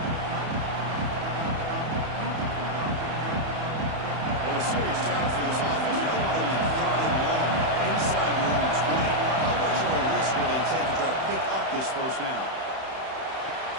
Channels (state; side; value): late; left; 31 ms